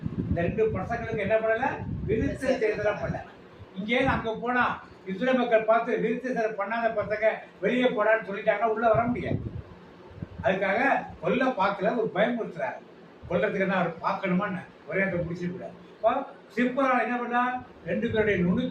இந்த 2 பசங்களுக்கு என்ன பண்ணல? விருத்த சேதனம் பண்ணல. இங்கே அங்க போனா இஸ்ரேல் மக்கள் பார்த்து விருத்த சேதனம் பண்ணாத பசங்க வெளியே போடான்னு சொல்லிட்டாங்க, உள்ள வர முடியாது. அதுக்காக கொல்ல பார்க்கல, ஒரு பயமுறுத்துறாரு. கொல்லத்துக்கு தான் அவர் பார்க்கணுமான்னு ஒரே அந்த முடிச்சு கூடாது. சிற்பரால் என்ன பண்ணா? 2 பேருடைய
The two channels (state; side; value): identical; both; correlation 1.00